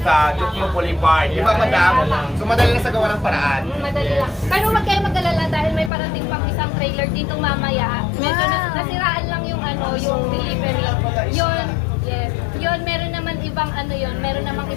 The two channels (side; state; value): right; drops out; at 5.9 s